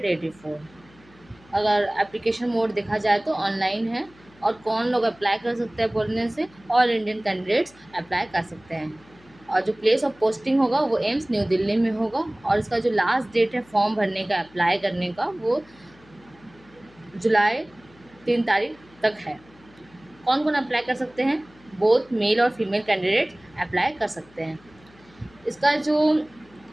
अगर एप्लीकेशन मोड देखा जाए तो ऑनलाइन है। और कौन लोग अप्लाई कर सकते हैं बोलने से ऑल इंडियन कैंडिडेट्स अप्लाई कर सकते हैं। और जो प्लेस ऑफ पोस्टिंग होगा वो एम्स न्यू दिल्ली में होगा। और इसका जो लास्ट डेट है फॉर्म भरने का, अप्लाई करने का, वो जुलाई 3 तारीख तक है। कौन कौन अप्लाई कर सकते हैं? बोथ मेल और फीमेल कैंडिडेट अप्लाई कर सकते हैं। इसका जो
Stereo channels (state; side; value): noise; left; hum, 27 dB below the sound